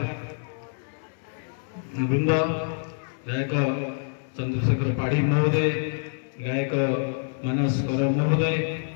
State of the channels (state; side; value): silent; right; 56 dB below the other